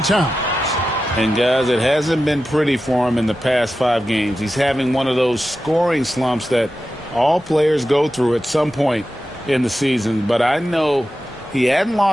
Towns. And guys, it hasn't been pretty for him in the past 5 games. He's having one of those scoring slumps that all players go through at some point in the season. But I know he hadn't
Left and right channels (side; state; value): both; normal; correlation 0.92